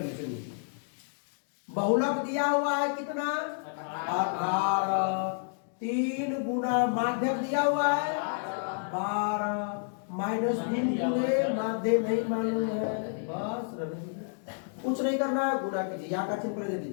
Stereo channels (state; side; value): silent; right; digital silence